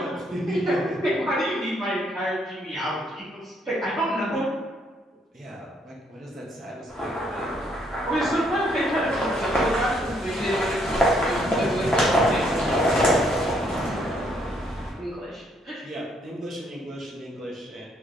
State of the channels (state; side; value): normal; both; correlation 0.70